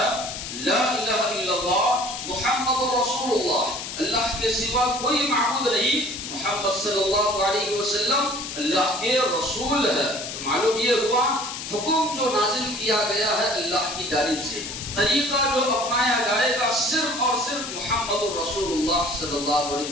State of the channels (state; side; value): noise; left; hiss, 7 dB below the sound